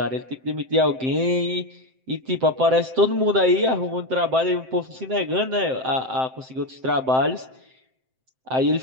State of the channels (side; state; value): left; late; 7.7 ms